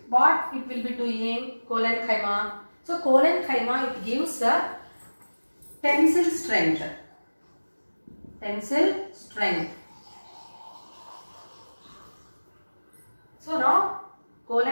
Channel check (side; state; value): both; inverted; correlation -1.00